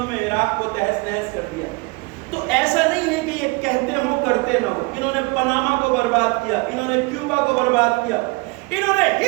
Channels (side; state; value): left; quieter; 26.8 dB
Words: میں عراق کو تہس نہس کر دیا۔ تو ایسا نہیں ہے کہ یہ کہتے ہوں کرتے نہ ہوں۔ انہوں نے پاناما کو برباد کیا، انہوں نے کیوبا کو برباد کیا، انہوں نے